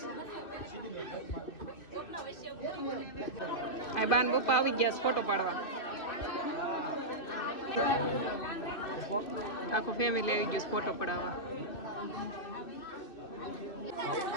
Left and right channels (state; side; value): late; right; 2.6 ms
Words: આ બાન બપ્પા આવી ગયા છે ફોટો પાડવા. આખું ફેમિલી આવી ગયું છે ફોટો પડાવવા.